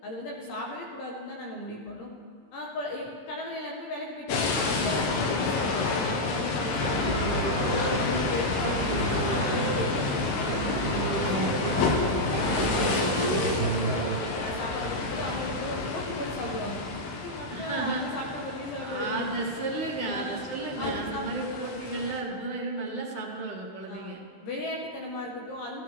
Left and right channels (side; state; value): right; late; 15 ms